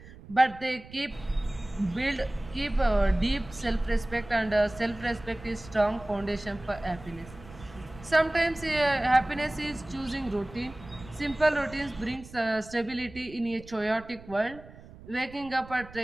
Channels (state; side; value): noise; right; rumble, 18 dB below the sound